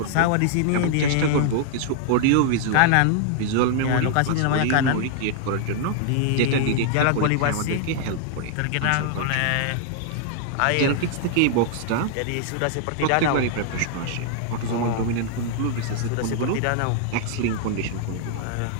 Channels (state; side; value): different; both; correlation 0.00